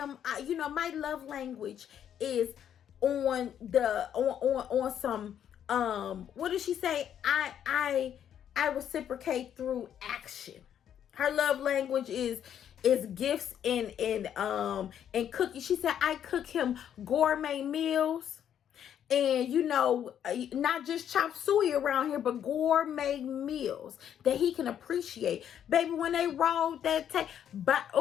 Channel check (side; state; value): right; quieter; 9.5 dB